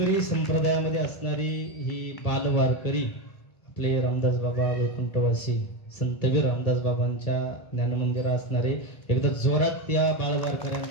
संप्रदायामध्ये असणारी ही बालवारकरी, आपले रामदास बाबा वैकुंठवासी संतवीर रामदास बाबांच्या ज्ञानमंदिरा असणारे, एकदा जोरात त्या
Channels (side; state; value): right; late; 1.7 ms